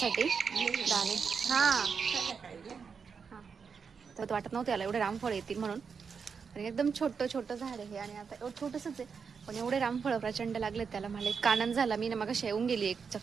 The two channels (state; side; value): quieter; left; 5.9 dB